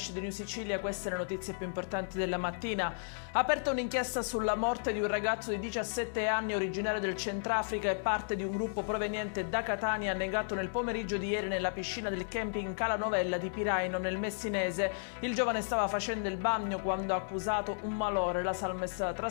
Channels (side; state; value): right; silent; digital silence